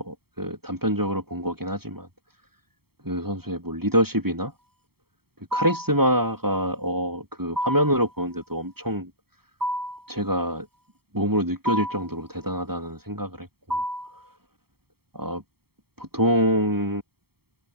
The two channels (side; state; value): left; late; 0.95 ms